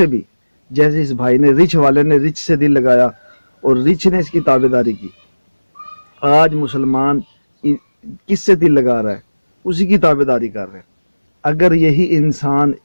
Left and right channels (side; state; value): both; inverted; correlation -1.00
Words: بھی، جیسے اس بھائی نے، رچ والے نے رچ سے دل لگایا اور رچ نے اس کی تابع داری کی، آج مسلمان کس سے دل لگا رہا ہے؟ اسی کی تابع داری کر رہے ہیں۔ اگر یہی انسان